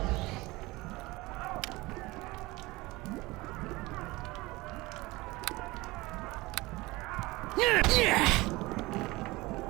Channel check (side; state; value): left; quieter; 21.4 dB